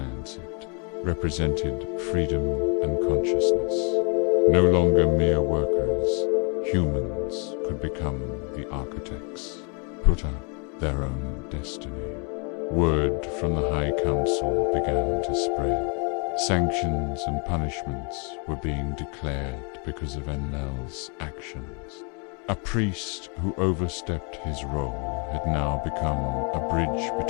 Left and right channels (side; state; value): right; quieter; 36.0 dB